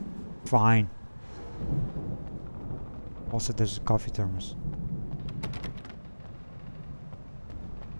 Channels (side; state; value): both; inverted; correlation -1.00